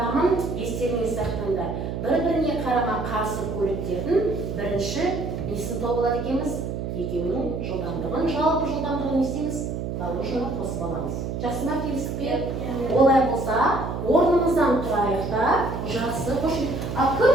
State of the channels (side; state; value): right; noise; hum, 4 dB below the sound